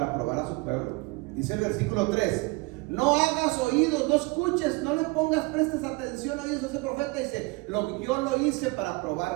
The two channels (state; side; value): quieter; left; 25.4 dB